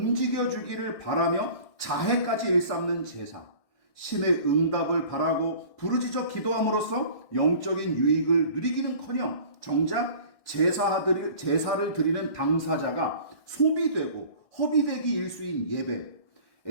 바라며 자해까지 일삼는 제사, 신의 응답을 바라고 부르짖어 기도함으로써 영적인 유익을 누리기는커녕 정작 제사를 드리는 당사자가 소비되고 허비되기 일수인 예배,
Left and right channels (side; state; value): right; late; 1.6 ms